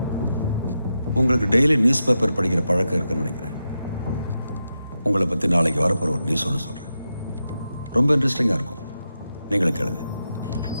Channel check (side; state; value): both; inverted; correlation -0.88